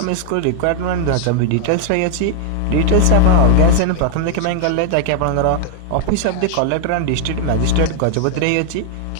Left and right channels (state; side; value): different; both; correlation 0.00